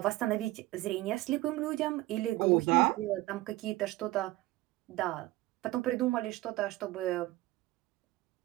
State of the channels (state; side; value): quieter; left; 18.2 dB